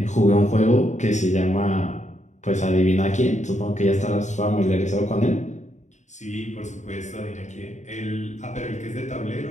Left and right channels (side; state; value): right; late; 0.34 ms